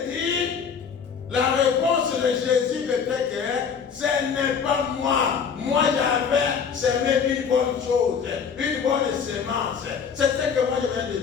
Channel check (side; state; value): right; quieter; 6.6 dB